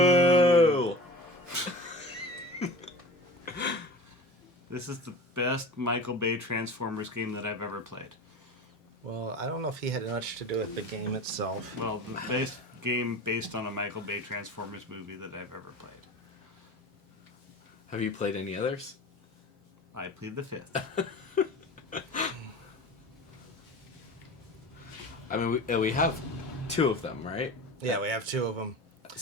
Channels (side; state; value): both; normal; correlation 0.35